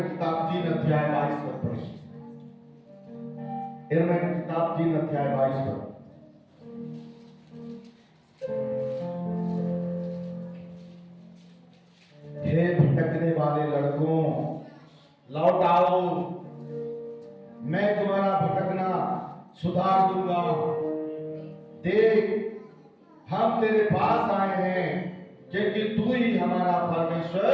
किताब 3 अध्याय 22 पद पढ़ें। यिर्मयाह की किताब 3 अध्याय 22 पद। हे भटकने वाले लड़कों, लौट आओ, मैं तुम्हारा भटकना सुधार दूंगा। देख, हम तेरे पास आए हैं क्योंकि तू ही हमारा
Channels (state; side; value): identical; both; correlation 1.00